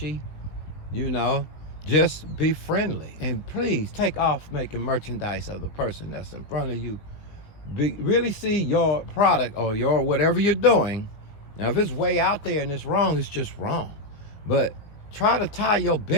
just be friendly. And please take off making merchandise of the person that's in front of you. Really see your product or your whatever you're doing. Now, if it's way out there and it's wrong, it's just wrong. But try to tie your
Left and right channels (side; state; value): right; late; 20 ms